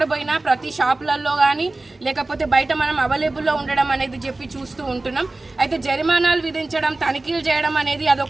పోయినా ప్రతి షాపులలో కానీ లేకపోతే బయట మనం అవైలబుల్లో ఉండడం అనేది చెప్పి చూస్తూ ఉంటున్నాం. అయితే జరిమానాలు విధించడం, తనిఖీలు చేయడం అనేది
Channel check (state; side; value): quieter; left; 3.0 dB